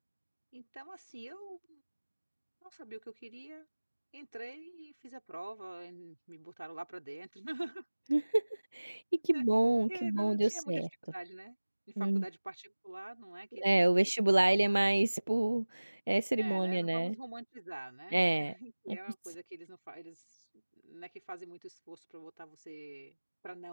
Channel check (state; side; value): inverted; both; correlation -1.00